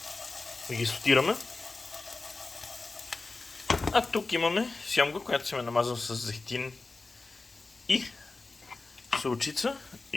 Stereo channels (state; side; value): quieter; right; 3.6 dB